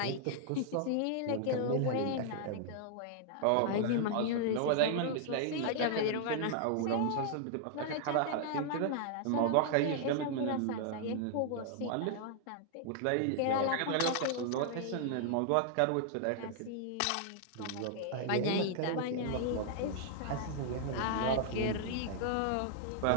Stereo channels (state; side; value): different; both; correlation -0.01